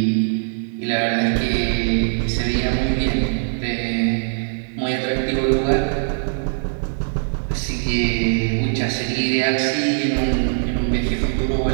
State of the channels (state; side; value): silent; left; digital silence